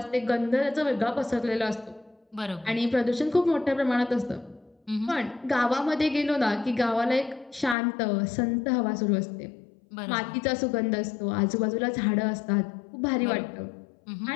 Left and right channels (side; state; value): right; drops out; at 7.8 s